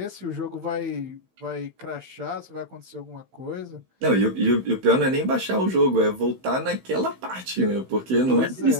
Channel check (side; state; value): left; late; 16 ms